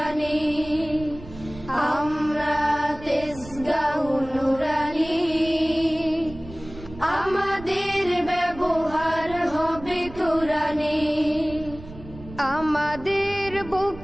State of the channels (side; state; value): right; noise; rumble, 16 dB below the sound